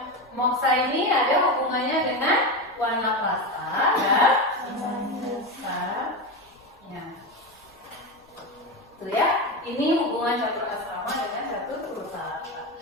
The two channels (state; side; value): normal; both; correlation 0.18